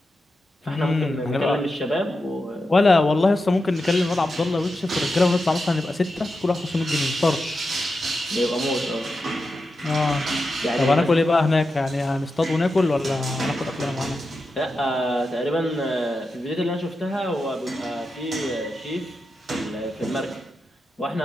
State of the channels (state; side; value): normal; both; correlation 0.89